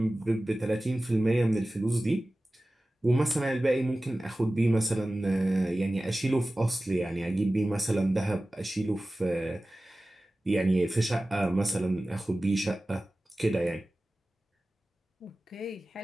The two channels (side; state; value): both; normal; correlation 0.96